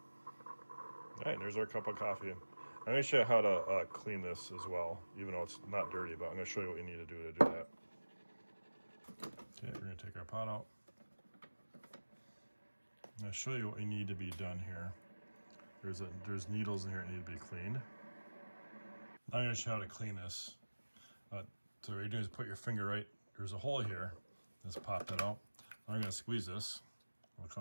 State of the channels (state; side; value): inverted; both; correlation -1.00